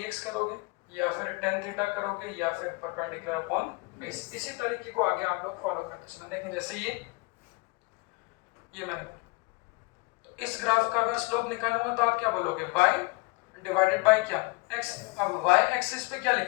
करोगे या फिर tan थीटा करोगे या फिर परपेंडिकुलर अपॉन बेस। इसी तरीके को आगे आप लोग फॉलो करते चलना। देखें जैसे ये मैंने बोला, तो इस ग्राफ का अगर स्लोप निकालूंगा तो आप क्या बोलोगे y डिवाइडेड बाय क्या x। अब y एक्सिस पे क्या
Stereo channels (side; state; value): right; quieter; 26.5 dB